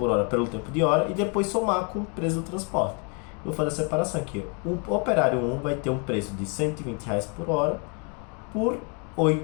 hora pelo tempo de hora e depois somar com o preço do transporte. Eu vou fazer a separação aqui. O operário 1 vai ter um preço de R$120 por hora por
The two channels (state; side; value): quieter; right; 36.1 dB